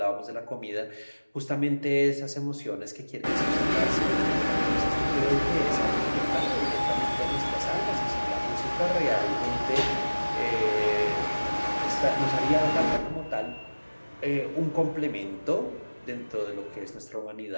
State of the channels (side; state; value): both; inverted; correlation -1.00